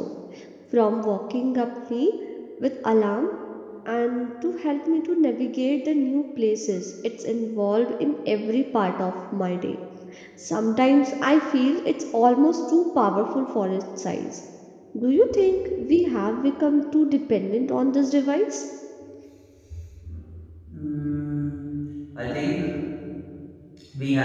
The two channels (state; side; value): identical; both; correlation 1.00